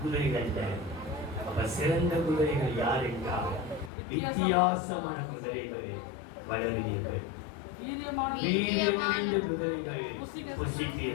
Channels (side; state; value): right; drops out; at 3.9 s